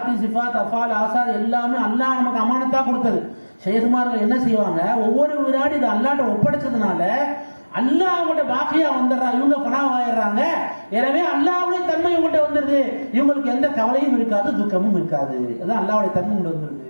சிஃபாத் அஃபால் ஆசார் எல்லாமே அல்லாஹ் நமக்கு அமானத்தா கொடுத்தது. ஷேகுமார்கள் என்ன செய்வாங்க, ஒவ்வொரு வினாடி இது அல்லாஹ்ட்ட ஒப்படைச்சதுனால அல்லாஹ் அவங்கள்ட்ட பாக்கியா வந்துடுறா, இவங்க பணாவாயிடுறாங்க. எனவே அல்லாஹ்வுடைய தன்மை இவங்கள்ட்ட வந்துருது, இவங்களுக்கு எந்த கவலையும் இருக்காது, துக்கமும் இருக்காது. அதான் அல்லாஹ்வுடைய தன்மை இவங்க வந்துருது.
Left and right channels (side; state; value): both; inverted; correlation -1.00